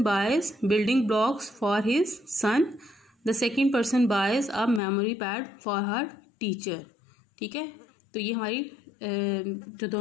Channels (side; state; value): right; drops out; at 4.8 s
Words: boys building blocks for his son. The second person boys a memory pad for her teacher. ठीक है, तो ये हमारी जो